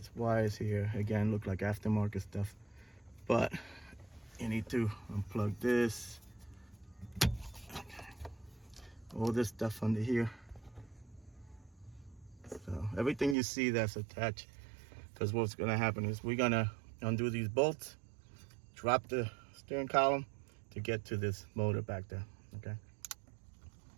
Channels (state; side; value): drops out; left; at 13.4 s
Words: wires here, again, look like aftermarket stuff, but you need to unplug this. All this stuff under here. So everything you see that's attached, because what's gonna happen is we're gonna undo these bolts, drop the steering column to get to this motor back there, okay?